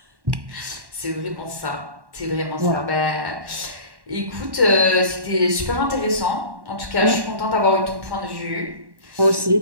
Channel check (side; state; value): left; late; 1.1 ms